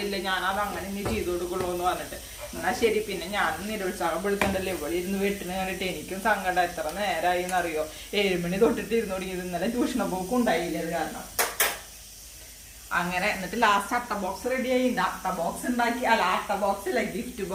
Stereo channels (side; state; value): both; identical; correlation 1.00